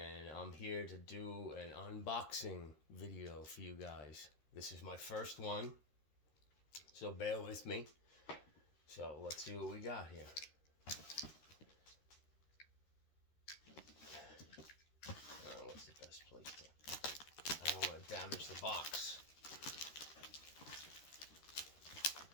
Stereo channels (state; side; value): late; right; 13 ms